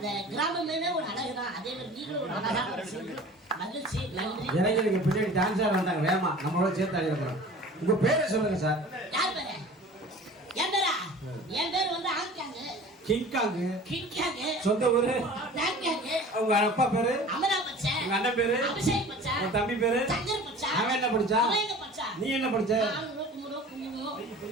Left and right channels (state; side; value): normal; both; correlation 0.42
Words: கிராமமே ஒரு அழகு தான். அதே மாதிரி நீங்களும் ஒரு அழகா மகிழ்ச்சி. நன்றி. இளைஞருக்கு பின்னாடி டான்ஸ் ஆட வந்தாங்க வேமா. நம்மளோட சேர்த்து ஆடி இருக்கிறோம். உங்க பேரை சொல்லுங்க சார். யார் பேரு? என் பேரா? என் பேர் வந்து ஆங்காங்கு. கிங்காங்கு. சொந்த ஊரு? டாங்காங்கு. உங்க அப்பா பேரு? அமரா பச்சா. உங்க அண்ணன் பேரு? அபிஷேக் பச்சா. உங்க தம்பி பேரு? சங்கர் பச்சா. அவன் என்ன படிச்சா? அவன் என்ன படிச்சா? நீ என்ன படிச்ச?